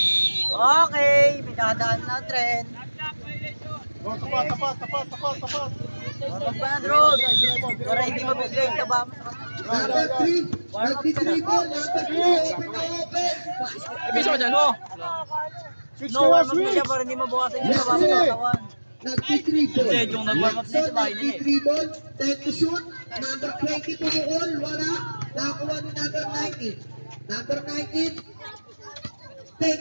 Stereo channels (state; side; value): inverted; both; correlation -1.00